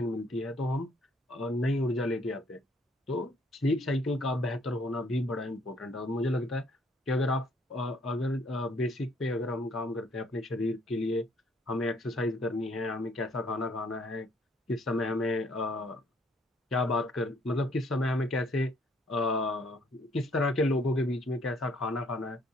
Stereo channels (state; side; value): normal; both; correlation 0.64